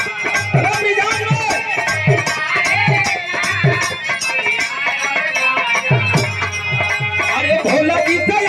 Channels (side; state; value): both; identical; correlation 1.00